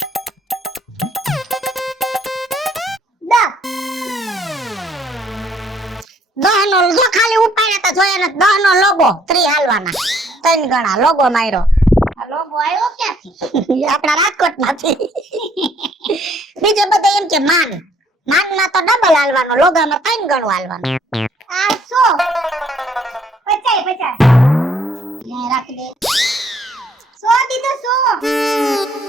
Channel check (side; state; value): both; normal; correlation 0.64